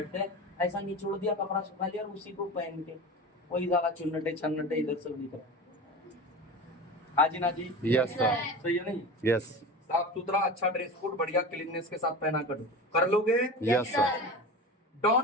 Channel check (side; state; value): both; normal; correlation 0.30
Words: हैं, ऐसा निचोड़ दिया कपड़ा सुखा लिया और उसी को पहन के वही ज्यादा चुन्नटे छन्नटे इधर से उधर। हाँ जी ना जी। Yes sir. सही है नहीं? यस साफ सुथरा अच्छा ड्रेस कोड बढ़िया क्लीननेस के साथ पहना कर लोगे। Yes sir.